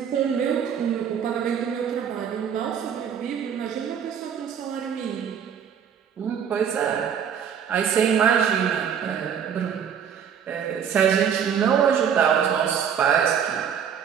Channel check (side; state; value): left; quieter; 8.0 dB